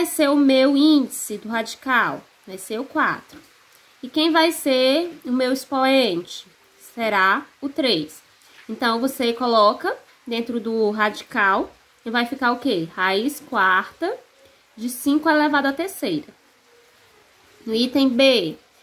ser o meu índice do radical? Vai ser o 4. E quem vai ser o meu expoente? Será o 3. Então, você coloca dentro do radical e vai ficar o quê? Raiz quarta de 5 elevado à terceira. No item B,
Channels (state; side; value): identical; both; correlation 1.00